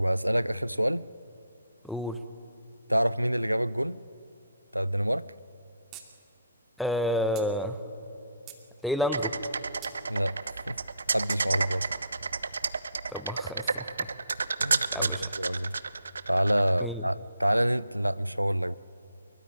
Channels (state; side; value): inverted; both; correlation -0.72